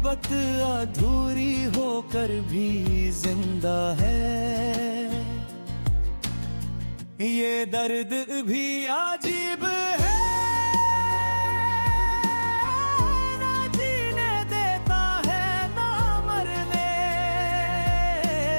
अधूरी होकर भी जिंदा है। ये दर्द भी अजीब है, ना जीने देता है ना मरने।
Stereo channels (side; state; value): both; inverted; correlation -1.00